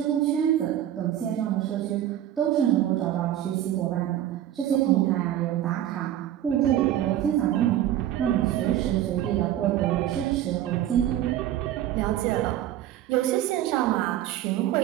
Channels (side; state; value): left; quieter; 12.0 dB